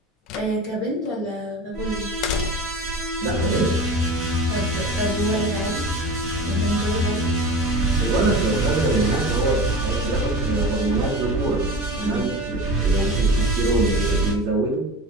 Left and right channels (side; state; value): both; normal; correlation 0.32